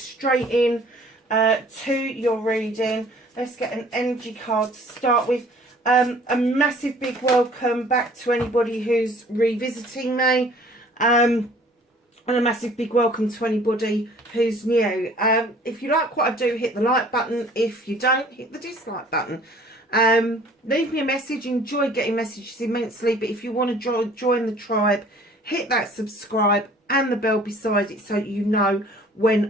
in to your reading. Let's get an energy card to start with. A massive big welcome back to anybody who's revisiting me. And a massive big welcome to anybody who's new. If you like what I do, hit the like button. If you don't, hit the dislike button. Leave me a message. Enjoy getting messages immensely. But if you want to join the tribe, hit that subscribe and the bell beside it so you know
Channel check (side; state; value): both; normal; correlation 0.53